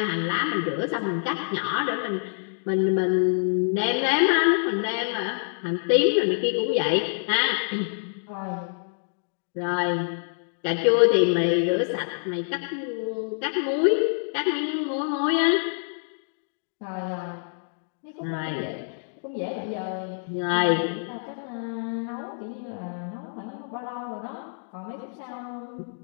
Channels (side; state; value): right; silent; digital silence